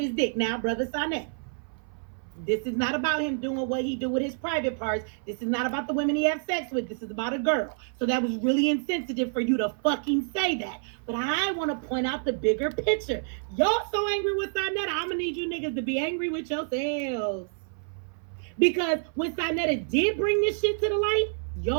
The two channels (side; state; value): left; silent; 59 dB below the other